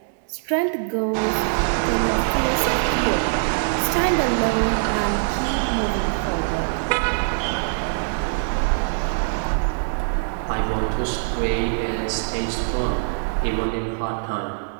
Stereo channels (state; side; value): silent; left; digital silence